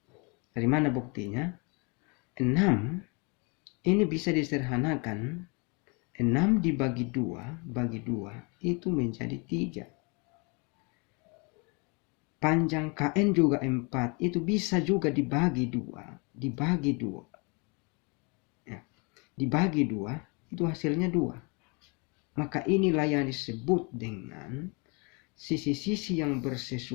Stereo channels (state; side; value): quieter; right; 31.7 dB